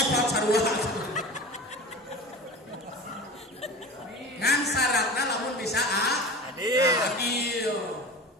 sarua. Ngan syaratna lamun bisa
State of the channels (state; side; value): normal; both; correlation 0.34